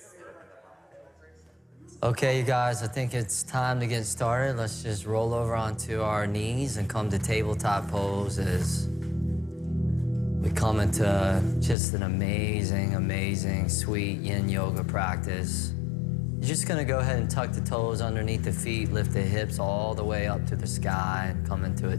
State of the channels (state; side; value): drops out; right; at 11.8 s